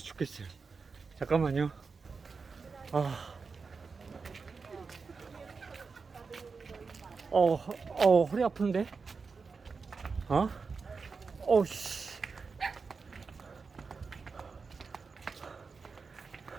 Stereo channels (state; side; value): quieter; left; 4.8 dB